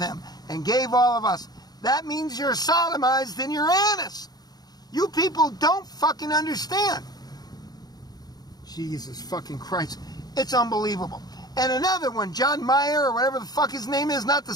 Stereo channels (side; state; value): right; late; 0.19 ms